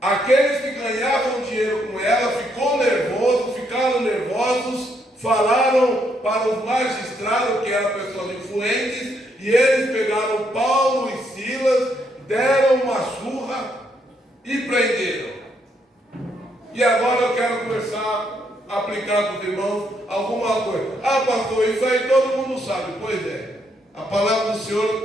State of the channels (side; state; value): both; normal; correlation 0.75